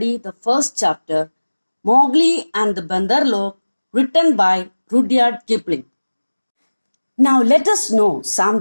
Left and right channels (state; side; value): inverted; both; correlation -1.00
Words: the first chapter, Mowgli and the Bandar, written by Rudyard Kipling. Now let us know